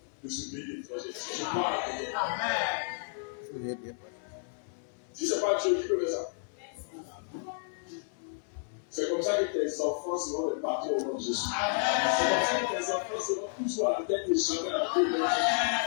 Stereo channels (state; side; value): silent; right; 56 dB below the other